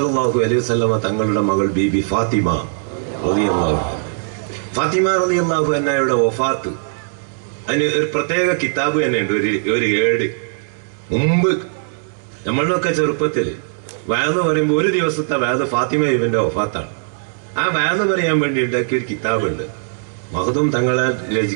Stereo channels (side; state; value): left; silent; 67 dB below the other